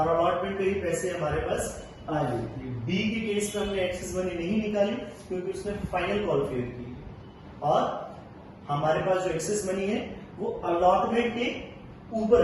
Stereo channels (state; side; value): identical; both; correlation 1.00